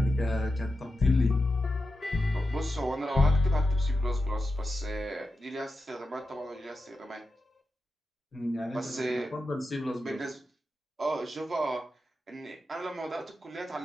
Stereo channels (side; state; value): both; normal; correlation 0.89